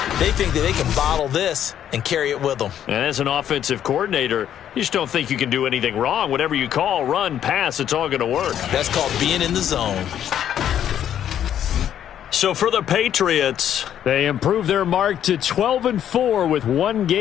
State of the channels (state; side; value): quieter; right; 10.2 dB